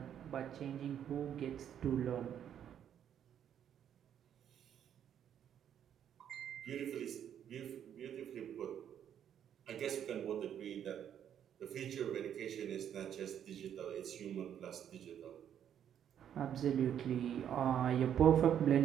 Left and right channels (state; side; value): quieter; left; 9.5 dB